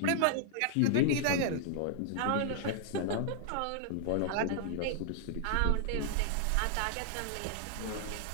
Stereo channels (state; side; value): different; both; correlation -0.01